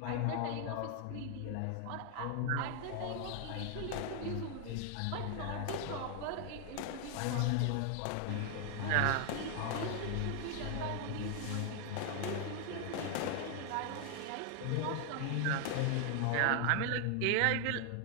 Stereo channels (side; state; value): both; different; correlation 0.00